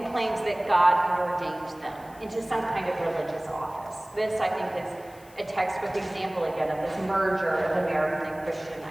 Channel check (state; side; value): noise; left; hiss, 25 dB below the sound